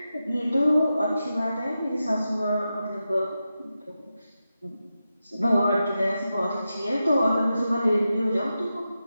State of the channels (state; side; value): inverted; both; correlation -0.90